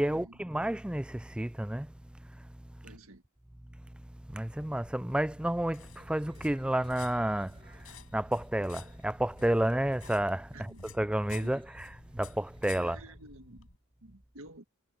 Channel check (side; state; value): both; normal; correlation 0.96